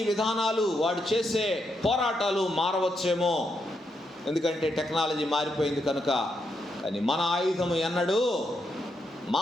విధానాలు, వాడు చేసే పోరాటాలు మారవచ్చేమో, ఎందుకంటే టెక్నాలజీ మారిపోయింది కనుక. కానీ మన ఆయుధము ఎన్నడూ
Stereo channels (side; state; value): both; normal; correlation 0.81